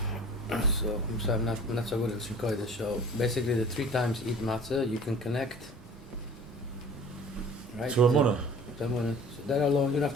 So I'm sorry, I'm not so good at Shikoida. So basically, the 3 times eat matzah, you can connect. Right? To a munah. So that alone, you don't have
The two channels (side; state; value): both; normal; correlation 0.46